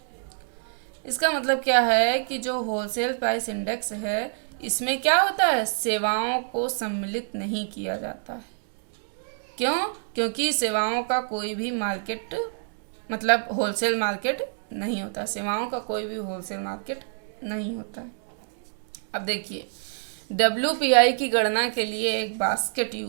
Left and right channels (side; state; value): left; silent; digital silence